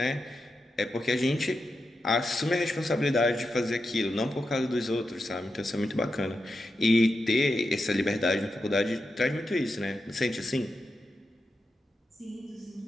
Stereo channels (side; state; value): both; normal; correlation 0.88